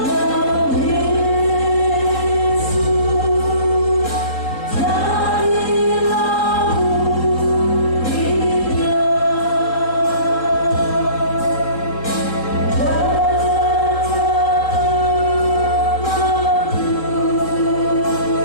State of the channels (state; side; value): late; right; 3.7 ms